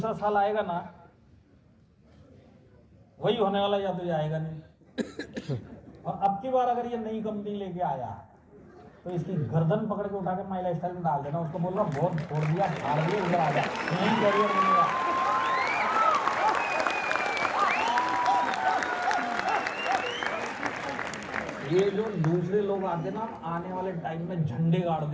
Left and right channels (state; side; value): identical; both; correlation 1.00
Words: साल आएगा ना वही होने वाला, या तो ये आएगा नहीं। और अब की बार अगर ये नई कंपनी लेके आया तो इसकी गर्दन पकड़ के उठा के माई लाइफस्टाइल में डाल देना, उसको बोलना बहुत छोड़ दिया, फाड़ दिया, उधर आ जा, यही कैरियर मिलेगा। ये जो दूसरे लोग आते ना आने वाले टाइम में झंडे गाड़